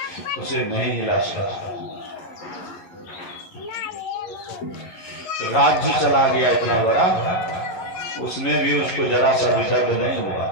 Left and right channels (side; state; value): right; late; 11 ms